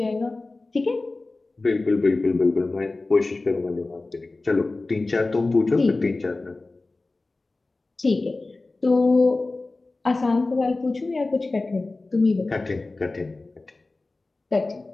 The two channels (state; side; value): quieter; right; 3.3 dB